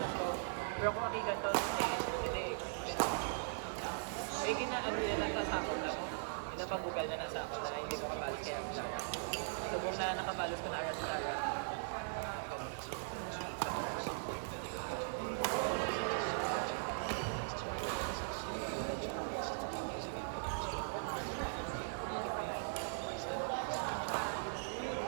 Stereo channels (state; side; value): silent; left; digital silence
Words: ko. Pero kung hindi ganito, hindi. Eh, ginaano niya nagkasakot lang. Pinapagugal niya nasa ako na hindi ko kapalos kaya ang Lara. So, kung na nakapalos ko na Aras Lara.